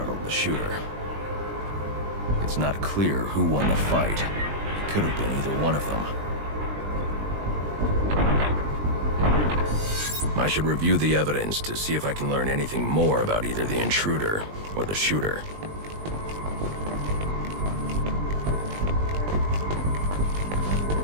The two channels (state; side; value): late; left; 20 ms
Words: the shooter. It's not clear who won the fight. It could have been either one of them. I should review the evidence to see if I can learn anything more about either the intruder or the shooter.